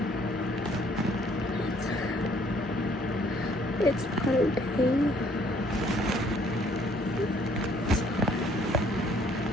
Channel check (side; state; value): both; normal; correlation 0.62